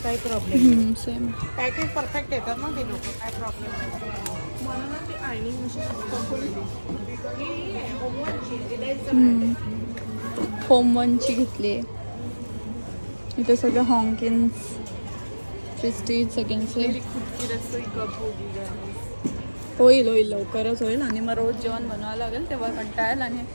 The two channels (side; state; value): both; inverted; correlation -1.00